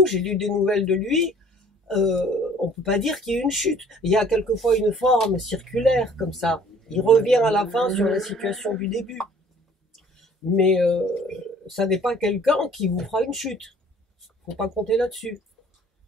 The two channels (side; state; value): both; normal; correlation 0.54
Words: j'ai lu des nouvelles de lui, on peut pas dire qu'il y ait une chute. Il y a quelquefois une forme circulaire comme ça. Il revient à la fin sur la situation du début. Mais ça n'est pas quelqu'un qui vous fera une chute. Faut pas compter là-dessus.